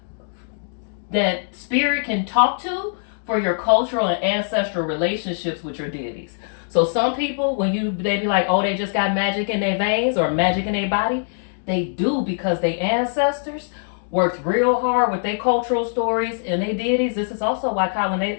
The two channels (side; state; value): right; silent; digital silence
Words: that spirit can talk to for your cultural and ancestral relationships with your deities. So some people, they be like, oh, they just got magic in their veins or magic in their body, they do because their ancestors worked real hard with their cultural stories and their deities. This is also why